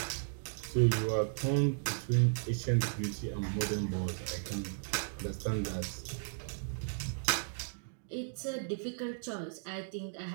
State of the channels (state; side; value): silent; left; digital silence